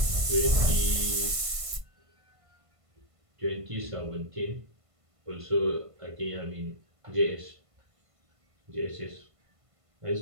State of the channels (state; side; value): late; left; 1.5 ms